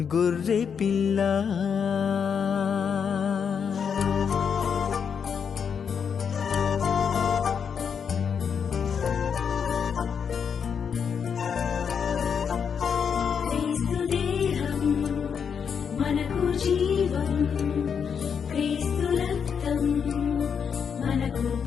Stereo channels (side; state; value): right; quieter; 6.9 dB